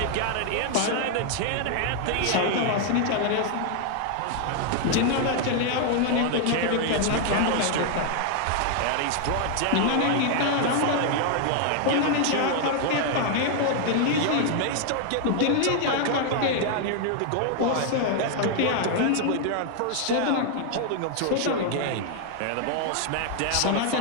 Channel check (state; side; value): different; both; correlation 0.00